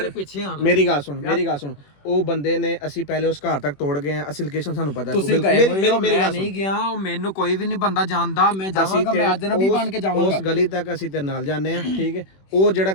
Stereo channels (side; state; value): right; late; 21 ms